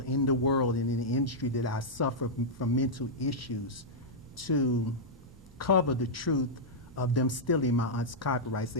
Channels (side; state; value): both; normal; correlation -0.08